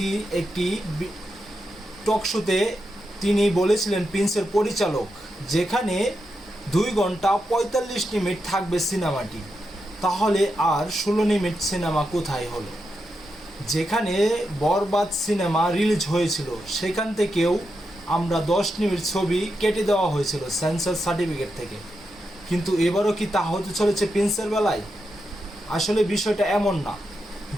একটি টক শোতে তিনি বলেছিলেন, প্রিন্সের পরিচালক, যেখানে 2 ঘন্টা 45 মিনিট থাকবে সিনেমাটি, তাহলে আর 16 মিনিট সিনেমা কোথায় হলো? যেখানে বরবাদ সিনেমা রিলিজ হয়েছিল সেখান থেকেও আমরা 10 মিনিট ছবি কেটে দেওয়া হয়েছিল সেন্সর সার্টিফিকেট থেকে। কিন্তু এবারও কি তা হতে চলেছে প্রিন্সের বেলায়? আসলে বিষয়টা এমন না।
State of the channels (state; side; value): normal; both; correlation 0.86